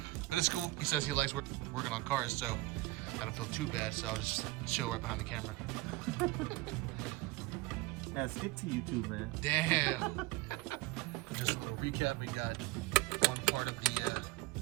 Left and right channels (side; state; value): left; quieter; 20.2 dB